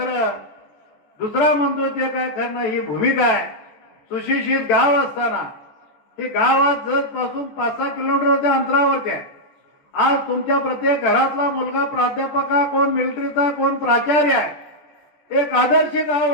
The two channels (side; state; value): right; late; 14 ms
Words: दुसरा म्हणतोय ते काय खरं नाही, ही भूमिका आहे. सुशिक्षित गाव असताना हे गावात जत पासून 5-6 किलोमीटरच्या अंतरावरती आहे. आज तुमच्या प्रत्येक घरातला मुलगा प्राध्यापक आहे, कोण मिलिटरीचा, कोण प्राचार्य आहे. एक आदर्श गाव